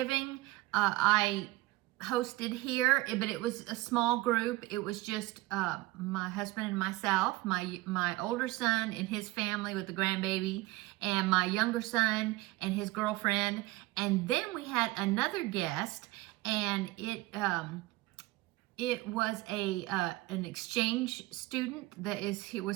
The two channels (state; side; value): quieter; left; 19.9 dB